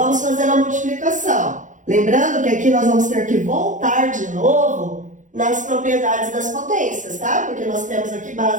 fazer a multiplicação. Lembrando que aqui nós vamos ter que voltar de novo nas propriedades das potências, tá? Porque nós temos aqui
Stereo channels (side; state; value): left; late; 0.37 ms